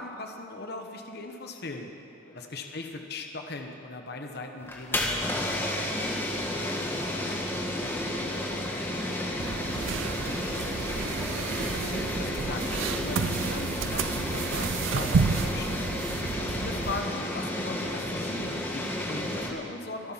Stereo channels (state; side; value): normal; both; correlation 0.49